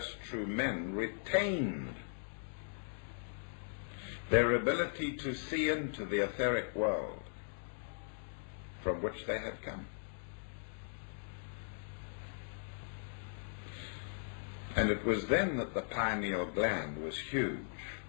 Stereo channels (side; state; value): right; silent; digital silence